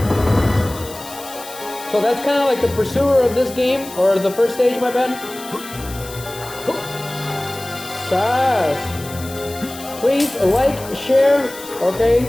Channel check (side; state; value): left; noise; hiss, 15 dB below the sound